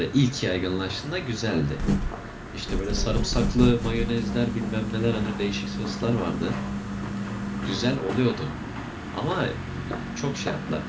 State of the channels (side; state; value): both; identical; correlation 1.00